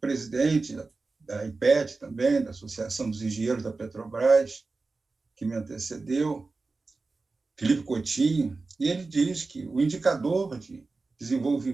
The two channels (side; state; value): left; quieter; 3.8 dB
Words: da IPET também, da Associação dos Engenheiros da Petrobras, que me antecedeu, Felipe Coutinho, e ele diz que o indicador de